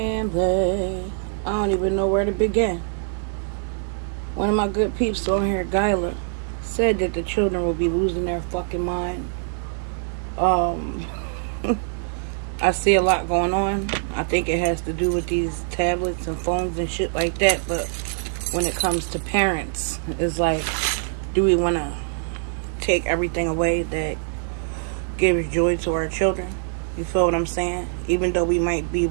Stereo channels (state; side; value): silent; left; digital silence